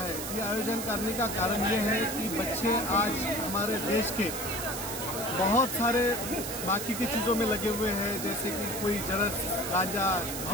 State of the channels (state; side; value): noise; right; hiss, 6 dB below the sound